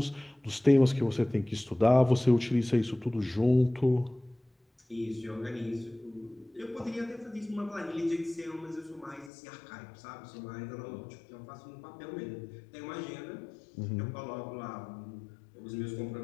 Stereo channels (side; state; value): right; drops out; at 9.3 s